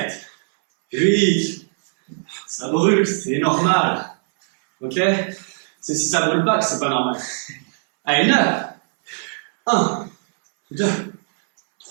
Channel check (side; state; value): left; silent; 66 dB below the other